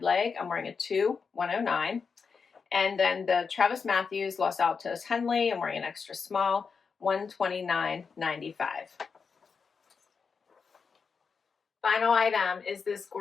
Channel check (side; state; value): right; quieter; 5.5 dB